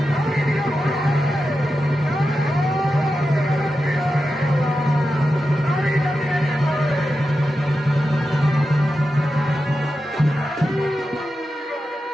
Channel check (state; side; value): normal; both; correlation 0.90